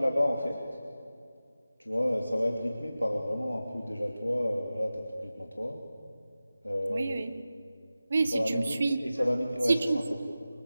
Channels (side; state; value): both; inverted; correlation -0.95